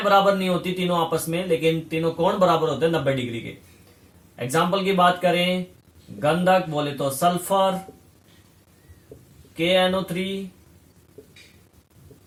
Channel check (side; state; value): both; identical; correlation 1.00